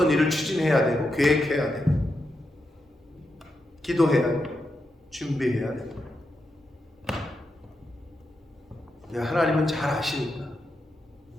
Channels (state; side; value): normal; both; correlation 0.86